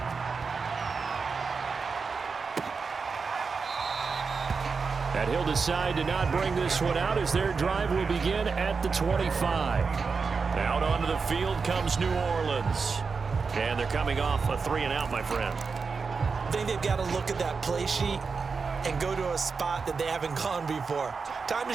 And he'll decide to not bring this one out as their drive will begin at the 25. Out onto the field comes New Orleans. And they're coming off a 3-and-out, my friend. I think they've got to look at that play sheet and go to a spot that they haven't gone before. Time to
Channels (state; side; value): quieter; left; 5.0 dB